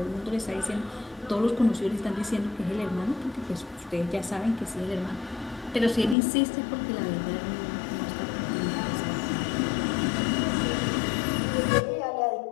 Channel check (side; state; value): right; drops out; at 6.2 s